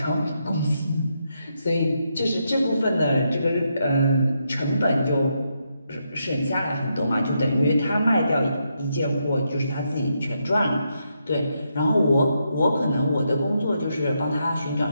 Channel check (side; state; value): both; inverted; correlation -0.81